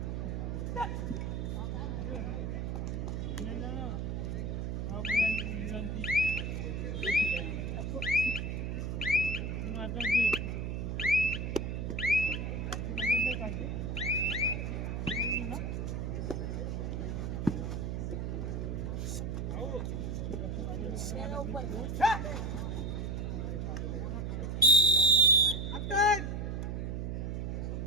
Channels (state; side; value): noise; right; hum, 2 dB below the sound